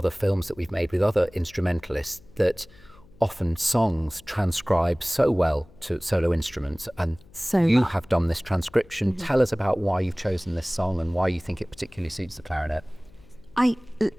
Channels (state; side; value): noise; left; hum, 25 dB below the sound